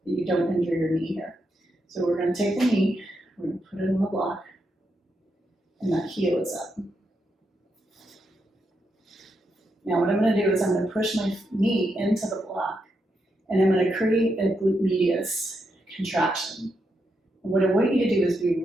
you don't injure your knee here. So we're going to take the knee, we're going to put it on the block, and that heel is up. Now what I'm going to do is I'm going to push my knee into the block, and I'm going to create a glute medius contraction. And what I want you to do is be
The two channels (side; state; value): both; normal; correlation 0.82